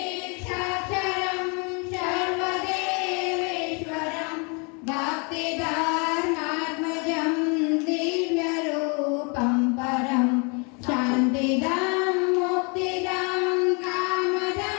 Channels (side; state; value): right; quieter; 33.6 dB